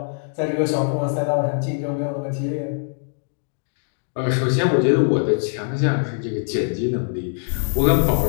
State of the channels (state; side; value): silent; right; 61 dB below the other